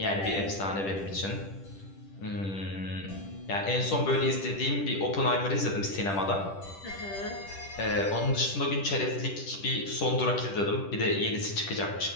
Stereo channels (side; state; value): right; late; 10 ms